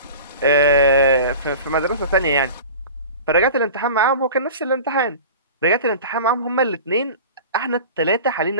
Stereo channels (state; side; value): inverted; both; correlation -0.36